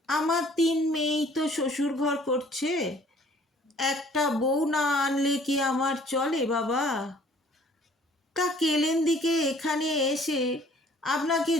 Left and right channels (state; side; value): normal; both; correlation 0.56